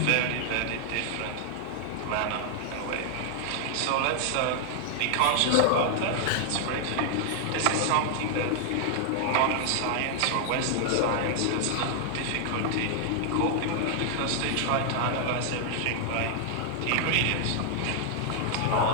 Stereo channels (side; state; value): both; different; correlation 0.00